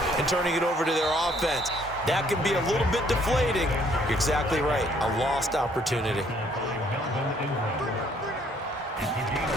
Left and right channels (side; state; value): both; normal; correlation 0.64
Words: and turning it over to their offense. That can be a little bit deflating. You're exactly right. A lost opportunity.